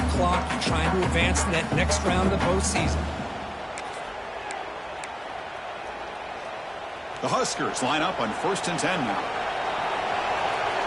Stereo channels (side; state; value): both; identical; correlation 1.00